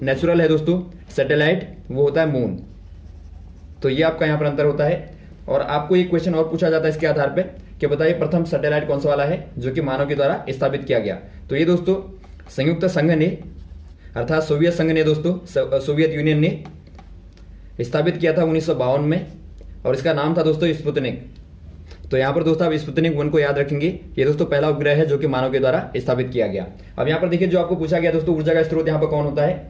नेचुरल है दोस्तों सैटेलाइट वो होता है मून। तो ये आपका यहाँ पर अंतर होता है। और आपको एक क्वेश्चन और पूछा जाता है इसके आधार पर कि बताइए प्रथम सैटेलाइट कौन सा वाला है जो कि मानव के द्वारा स्थापित किया गया। तो ये दोस्तों संयुक्त संघ ने अर्थात सोवियत संघ ने दोस्तों, सोवियत यूनियन ने स्थापित किया था 1952 में, और इसका नाम था दोस्तों स्पुतनिक। तो यहाँ पर दोस्तों आप स्पुतनिक 1 को याद रखेंगे। ये दोस्तों पहला उपग्रह है जो कि मानव के द्वारा स्थापित किया गया। अब यहाँ पर देखिए जो आपको पूछा गया दोस्तों ऊर्जा का स्रोत यहाँ पर कौन होता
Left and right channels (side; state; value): both; identical; correlation 1.00